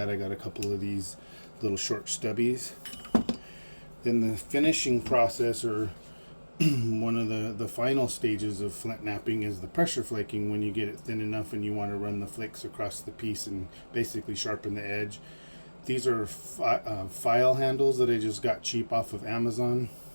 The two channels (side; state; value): both; inverted; correlation -1.00